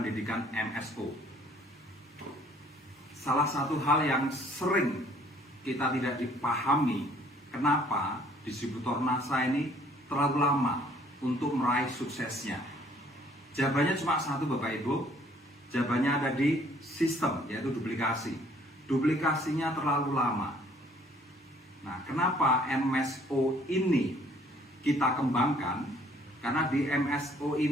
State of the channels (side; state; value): both; normal; correlation 0.59